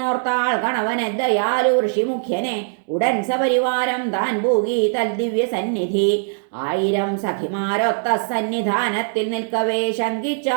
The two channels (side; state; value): left; silent; 65 dB below the other